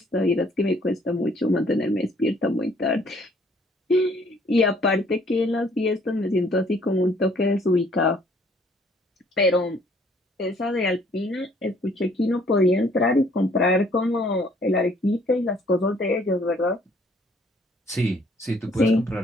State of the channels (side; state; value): both; normal; correlation 0.62